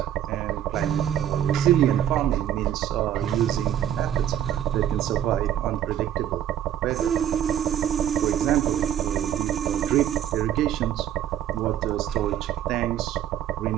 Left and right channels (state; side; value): quieter; left; 10.7 dB